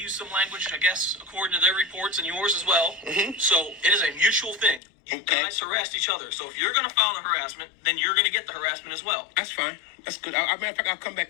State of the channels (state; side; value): drops out; right; at 4.8 s